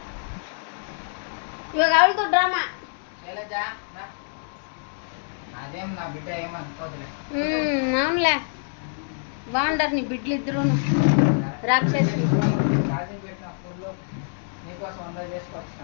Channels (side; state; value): right; silent; digital silence